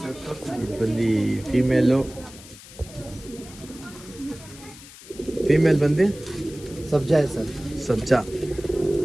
ಇದು ಬಂದು ಫೀಮೇಲ್ ಬಂದು ಸಬ್ಜಾ ಸರ್. ಸಬ್ಜಾ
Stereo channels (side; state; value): left; noise; hiss, 18 dB below the sound